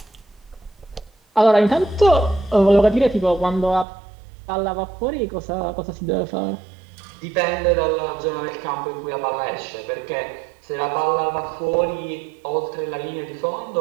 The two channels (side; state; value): left; drops out; at 3.9 s